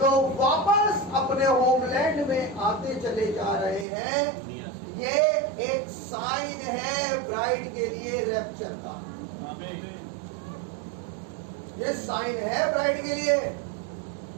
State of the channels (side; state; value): left; drops out; at 3.9 s